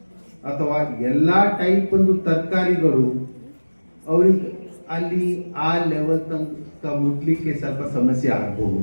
ಅಥವಾ ಎಲ್ಲ ಟೈಪ್ ಒಂದು ತರಕಾರಿಗಳು ಅವರಿಗೆ ಅಲ್ಲಿ ಆ ಲೆವೆಲ್ ತನಕ ಮುಟ್ಲಿಕ್ಕೆ ಸ್ವಲ್ಪ ಸಮಸ್ಯೆ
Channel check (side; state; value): both; inverted; correlation -1.00